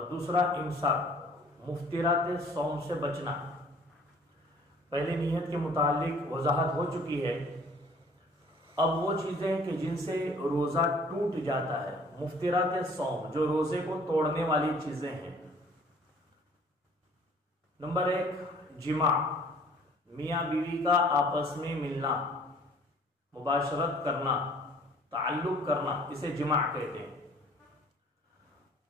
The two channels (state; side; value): normal; both; correlation 0.54